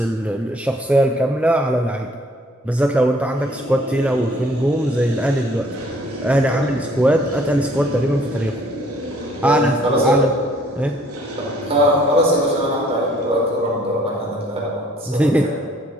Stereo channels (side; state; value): both; normal; correlation 0.60